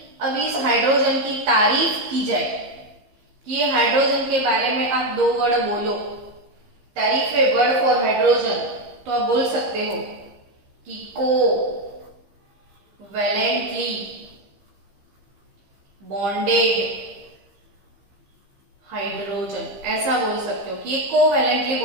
अब इस हाइड्रोजन की तारीफ की जाए कि ये हाइड्रोजन के बारे में आप दो वर्ड बोलो, तारीफ है वर्ड फॉर हाइड्रोजन, तो आप बोल सकते हो कि को वैलेंटली बॉन्डेड हाइड्रोजन, ऐसा बोल सकते हो कि ये कोवैलेंटली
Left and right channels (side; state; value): left; late; 15 ms